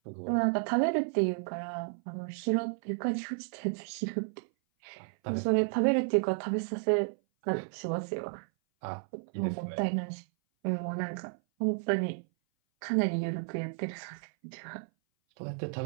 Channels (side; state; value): left; silent; 56 dB below the other